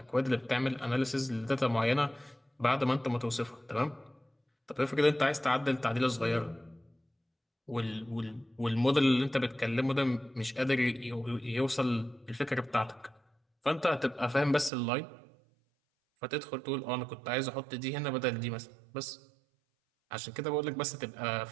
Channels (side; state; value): left; drops out; at 14.7 s